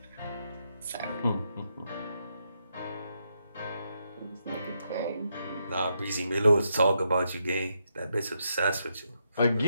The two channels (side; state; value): both; inverted; correlation -0.80